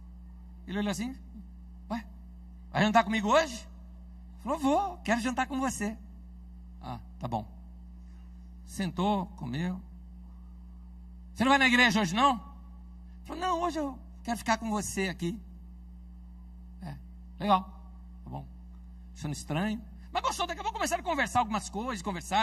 Ele olhou assim, ué, vai jantar comigo hoje? Falou, vou, quero jantar com você. Ah, tá bom. Sentou, comeu. Você não vai na igreja hoje, não? Falou, não, hoje eu quero ficar com você aqui. Legal, tá bom. Achando estranho. Mas gostou, daqui a pouco começaram a conversar algumas coisas,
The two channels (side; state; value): both; identical; correlation 1.00